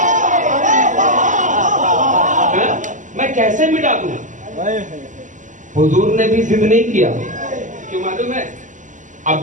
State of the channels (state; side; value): late; left; 0.37 ms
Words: میں کیسے مٹا دوں؟ حضور نے بھی ضد نہیں کیا، کیوں معلوم ہے؟